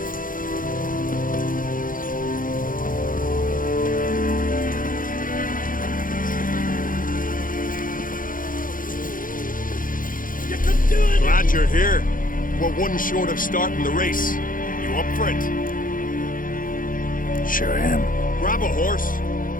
Glad you're here. We're one short of starting the race. You up for it? Sure am. Grab a horse.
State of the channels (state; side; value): late; right; 0.40 ms